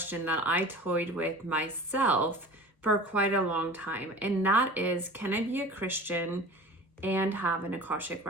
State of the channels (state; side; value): normal; both; correlation 0.39